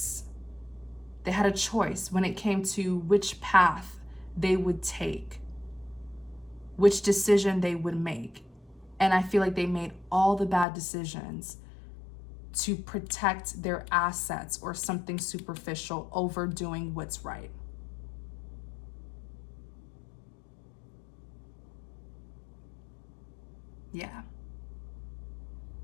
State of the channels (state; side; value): drops out; right; at 10.7 s